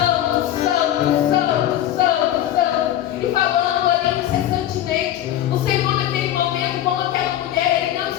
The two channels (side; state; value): right; quieter; 12.3 dB